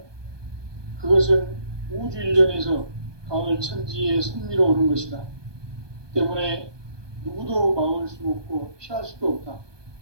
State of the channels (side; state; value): left; late; 1.2 ms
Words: 그것은 우주 일련에서 가을 천지의 섭리로 오는 것이다. 때문에 누구도 막을 수 없고 피할 수도 없다.